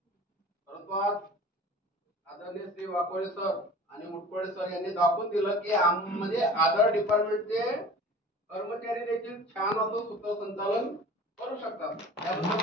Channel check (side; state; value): both; normal; correlation 0.42